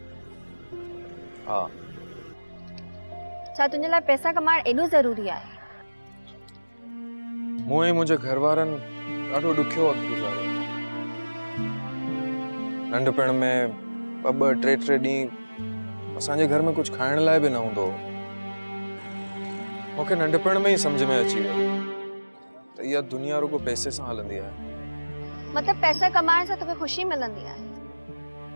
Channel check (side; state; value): both; inverted; correlation -1.00